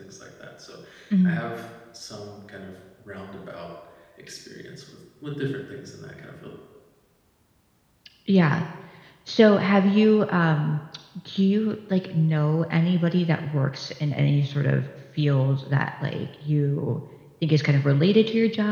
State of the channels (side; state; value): both; identical; correlation 1.00